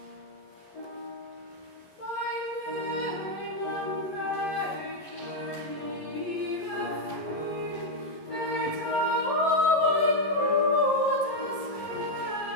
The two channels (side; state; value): right; late; 11 ms